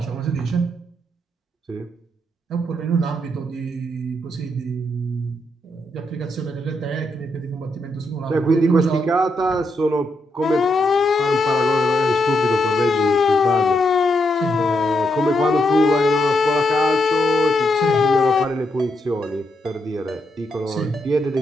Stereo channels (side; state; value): both; normal; correlation 0.80